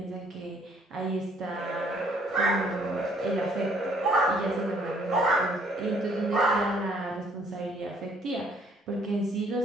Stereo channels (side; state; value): both; normal; correlation 0.62